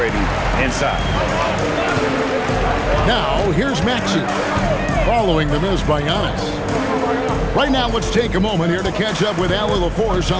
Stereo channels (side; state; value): both; identical; correlation 1.00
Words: inside. Now, here's Maxey, following the miss by Giannis. Right now, let's take a moment here to catch up with Allie LaForce